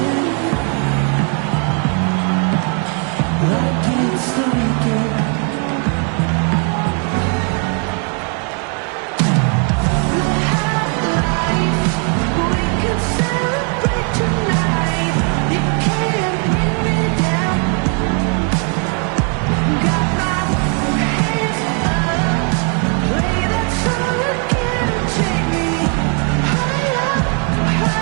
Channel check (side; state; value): left; quieter; 39.6 dB